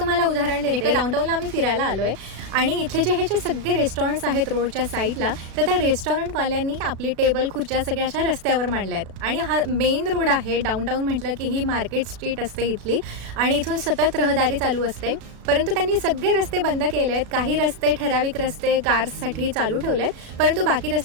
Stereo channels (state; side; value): late; left; 36 ms